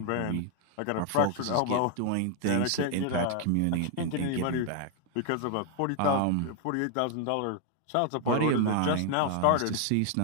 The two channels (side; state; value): both; different; correlation 0.00